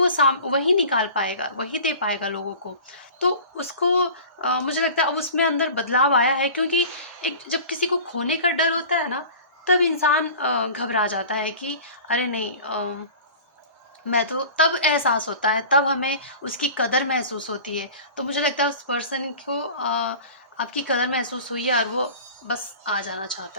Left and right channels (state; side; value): inverted; both; correlation -0.40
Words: वही निकाल पाएगा, वही दे पाएगा लोगों को। तो उसको मुझे लगता है अब उसमें अंदर बदलाव आया है, क्योंकि एक जब किसी को खोने का डर होता है ना, तब इंसान घबरा जाता है कि अरे नहीं, मैं तो तब एहसास होता है, तब हमें उसकी कदर महसूस होती है। तो मुझे लगता है उस पर्सन को आपकी कदर महसूस हुई है, और वो बस आ जाना